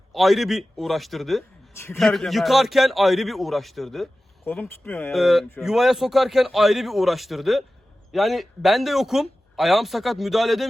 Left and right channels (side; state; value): both; normal; correlation 0.95